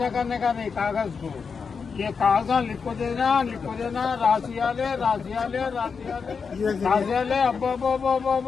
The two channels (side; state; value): right; quieter; 5.6 dB